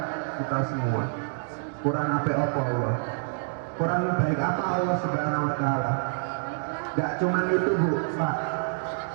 kita semua. Kurang apa Allah? Kurang baik apa Allah Subhanahu Wa Taala? Gak cuman itu, Bu, Pak.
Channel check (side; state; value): left; silent; digital silence